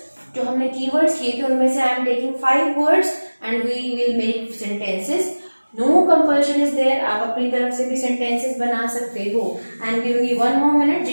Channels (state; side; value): inverted; both; correlation -1.00